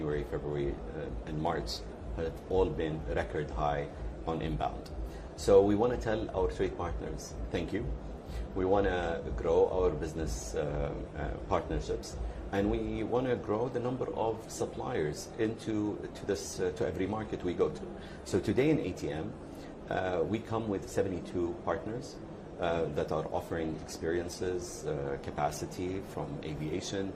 February, and March have all been record high on inbound. So we want to tell our trade partners, thank you. We want to grow our business partnerships, and we want to grow the number of suppliers to every market we go to. So today in ATM, we come with 72 partners that are offering experiences, capacity from aviation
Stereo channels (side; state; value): both; identical; correlation 1.00